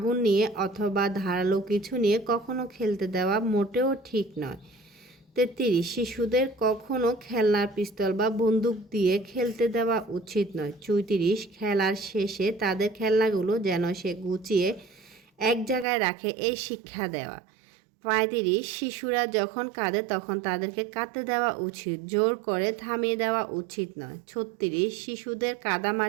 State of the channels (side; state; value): left; drops out; at 15.9 s